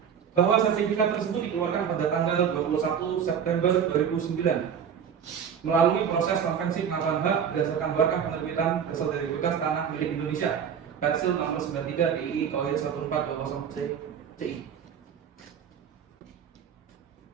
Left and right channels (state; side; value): quieter; left; 7.8 dB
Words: bahwa sertifikat tersebut dikeluarkan pada tanggal 21 September 2009 melalui proses konvensi pengakuan hak berdasarkan berkah penerbitan dasar dari bekas tanah milik Indonesia Persil nomor 93 DII KOIR 1420 CI.